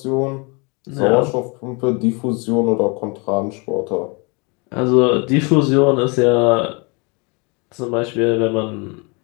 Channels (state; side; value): quieter; right; 30.7 dB